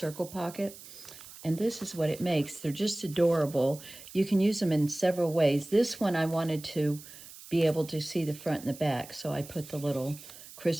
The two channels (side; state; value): right; noise; hiss, 17 dB below the sound